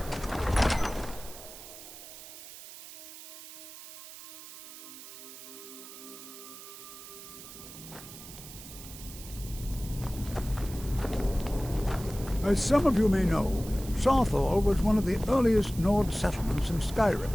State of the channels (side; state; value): right; noise; hiss, 14 dB below the sound